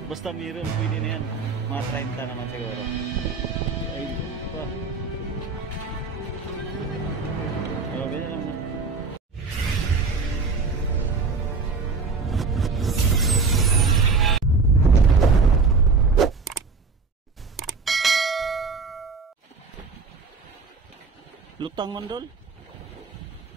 Basta meron, pwede na yan. Mga 30 naman siguro. Ay, pa. Oh, ganyan lang na. Lutang mandol.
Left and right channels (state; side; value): quieter; left; 4.4 dB